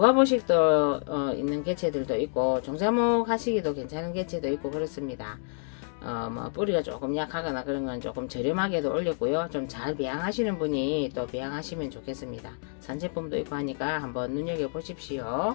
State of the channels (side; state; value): right; silent; 59 dB below the other